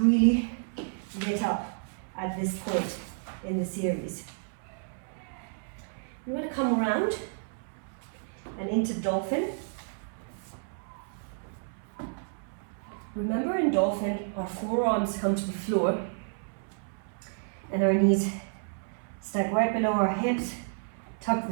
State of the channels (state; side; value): silent; left; 57 dB below the other